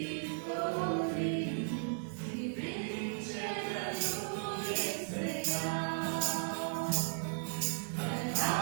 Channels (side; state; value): left; silent; 54 dB below the other